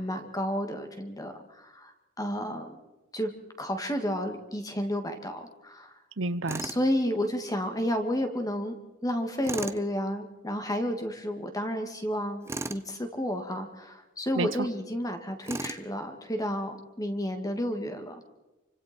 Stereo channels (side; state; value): both; normal; correlation 0.71